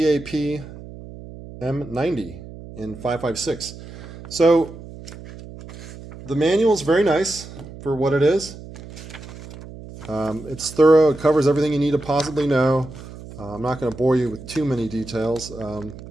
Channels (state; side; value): noise; right; hum, 15 dB below the sound